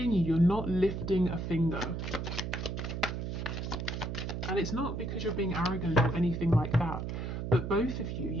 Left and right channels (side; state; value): right; noise; hum, 4 dB below the sound